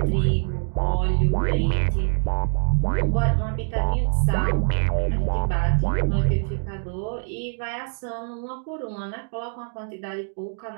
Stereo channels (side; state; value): left; silent; 62 dB below the other